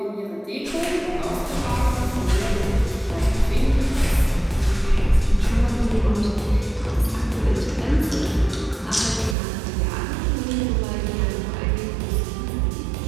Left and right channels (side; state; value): left; drops out; at 9.3 s